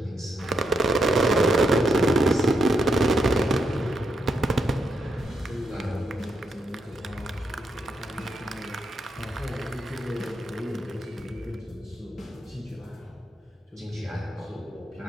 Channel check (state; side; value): normal; both; correlation 0.81